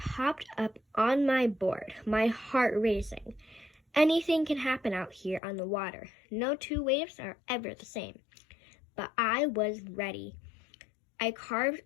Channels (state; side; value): drops out; right; at 5.4 s